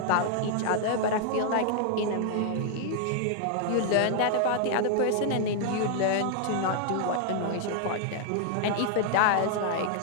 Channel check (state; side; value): different; both; correlation -0.01